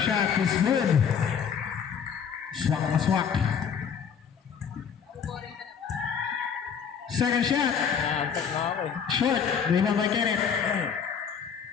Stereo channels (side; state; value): right; quieter; 7.2 dB